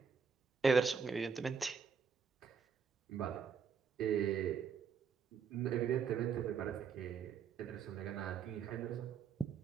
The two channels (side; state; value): left; quieter; 6.3 dB